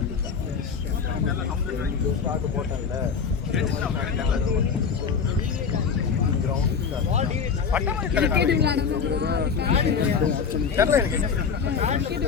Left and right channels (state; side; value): quieter; right; 6.1 dB